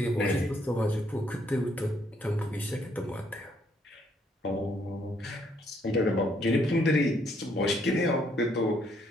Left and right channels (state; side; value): normal; both; correlation 0.70